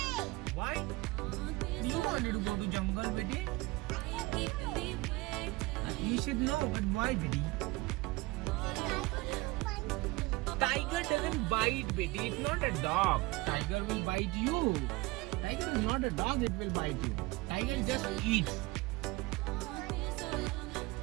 Why? You wanted to go to jungle, Betty? You should know, but why, Betty? Tiger doesn't bite, Betty. It's not a dog. Tiger will bite you. Tiger is not a dog, it will bite you. Tiger just eats.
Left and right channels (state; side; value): quieter; left; 22.3 dB